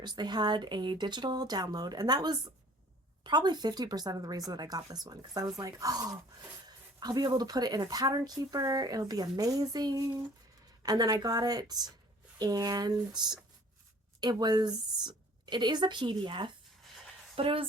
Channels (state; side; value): normal; both; correlation 0.52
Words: They had a digital download, and that was probably 50% of the reason that I got this one, because I was like, oh, I'll be able to put it in a pattern keeper. It'll be amazing. And then I got it, and it is a PDF, but it